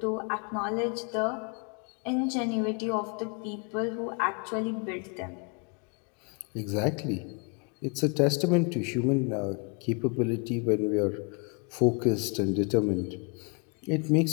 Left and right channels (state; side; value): quieter; right; 34.0 dB